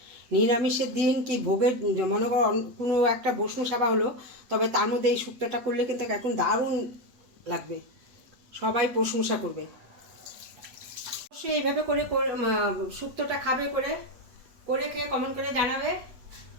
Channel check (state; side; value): late; left; 8.2 ms